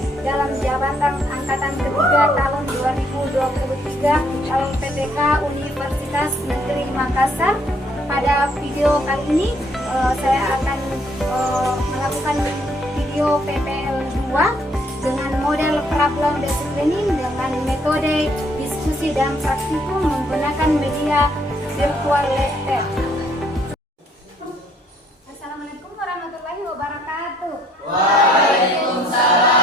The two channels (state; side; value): normal; both; correlation 0.66